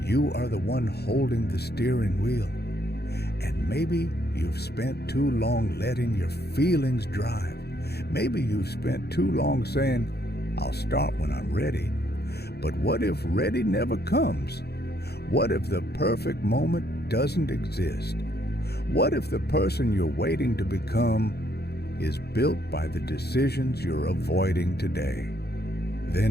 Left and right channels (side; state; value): right; late; 0.47 ms